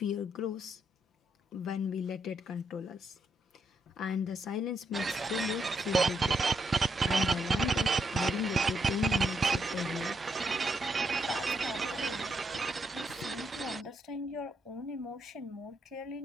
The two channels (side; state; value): both; normal; correlation 0.79